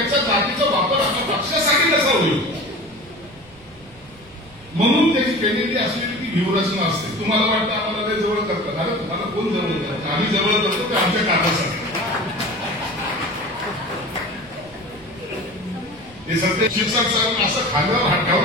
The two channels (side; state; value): right; noise; rumble, 25 dB below the sound